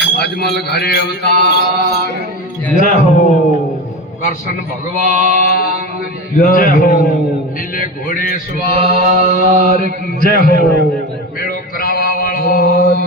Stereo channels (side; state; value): both; normal; correlation 0.25